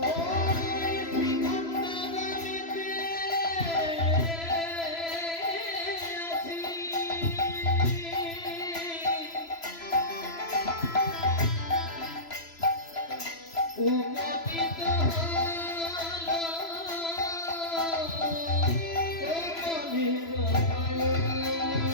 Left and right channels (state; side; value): late; right; 3.0 ms